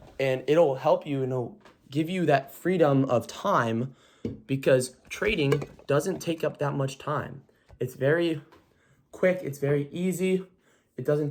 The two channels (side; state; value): both; identical; correlation 1.00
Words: and it'll help you, give you that freedom of time, because trading doesn't take up that much time. It's very quick. It's very easy. It doesn't